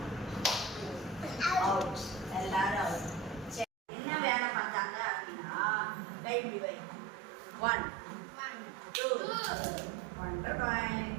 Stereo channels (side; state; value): left; drops out; at 3.7 s